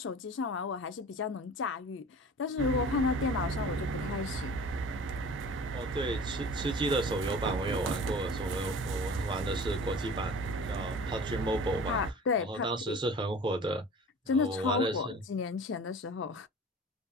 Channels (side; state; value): both; normal; correlation 0.41